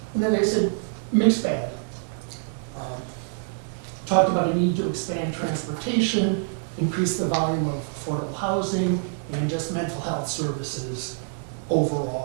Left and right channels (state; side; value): silent; left; 61 dB below the other